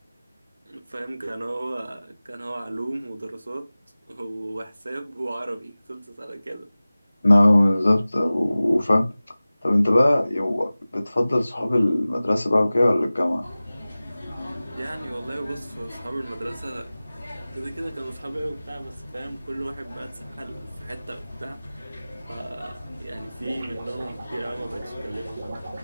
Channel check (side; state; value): both; inverted; correlation -0.98